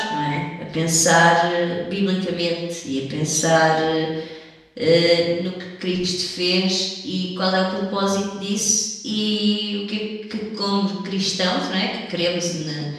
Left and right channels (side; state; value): both; identical; correlation 1.00